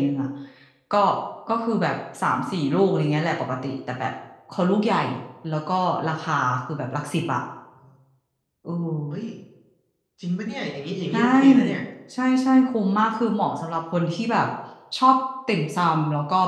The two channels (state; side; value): identical; both; correlation 1.00